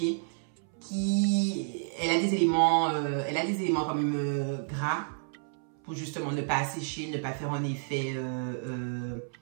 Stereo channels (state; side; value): silent; left; 58 dB below the other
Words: qui... Elle a des éléments quand même gras pour justement ne pas assécher, ne pas faire un effet